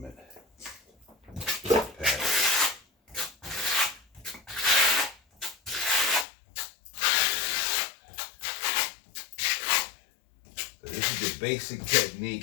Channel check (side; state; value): right; drops out; at 6.2 s